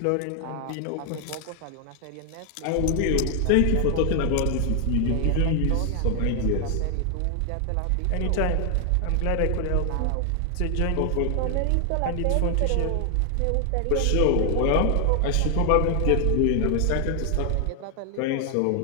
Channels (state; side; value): different; both; correlation 0.00